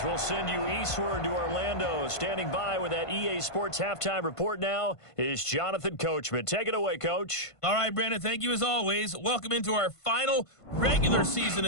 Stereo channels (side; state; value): right; late; 1.5 ms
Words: we'll send you eastward to Orlando. Standing by with that EA Sports halftime report now is Jonathan Coachman. Take it away, Coach. All right, Brandon, thank you as always. Welcome into our final regular season